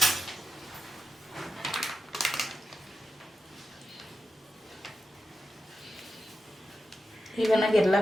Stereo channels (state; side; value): normal; both; correlation 0.89